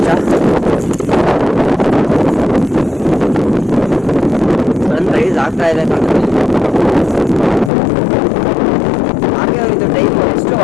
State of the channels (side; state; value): right; drops out; at 7.7 s